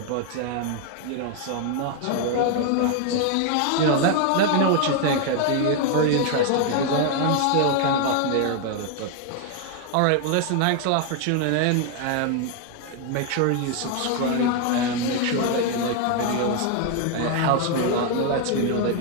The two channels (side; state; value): both; different; correlation 0.00